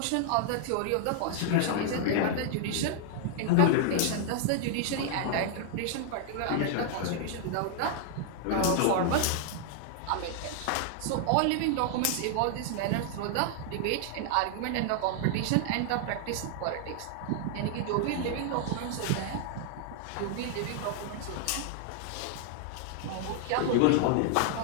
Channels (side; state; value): both; different; correlation 0.00